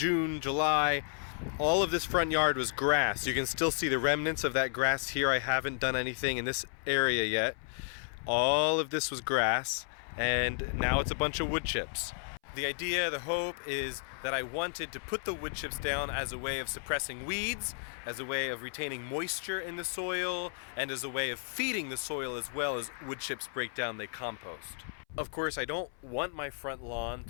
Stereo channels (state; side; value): silent; right; 56 dB below the other